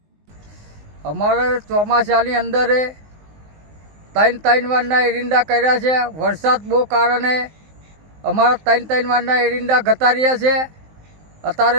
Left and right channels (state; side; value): late; left; 19 ms